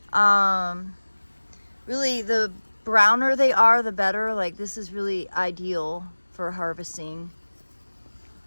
Really, the browner they are, the better. Like, this is really ideal for harvesting.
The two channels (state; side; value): inverted; both; correlation -1.00